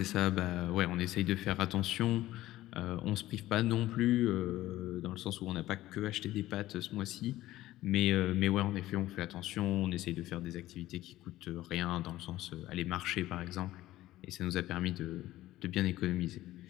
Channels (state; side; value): quieter; right; 15.6 dB